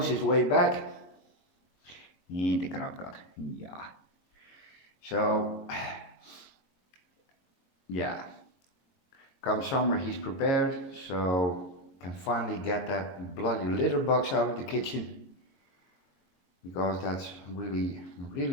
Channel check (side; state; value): right; late; 22 ms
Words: his way back. Inte karatkat. Yeah. So, yeah. Come summer, he's prepared, so can finally get that bloody litter box out of the kitchen, because that's really,